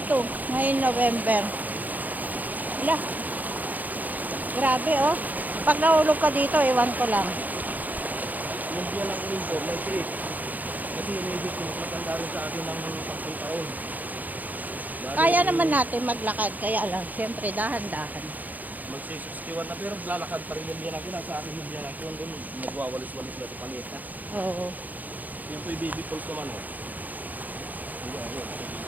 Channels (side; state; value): left; late; 0.082 ms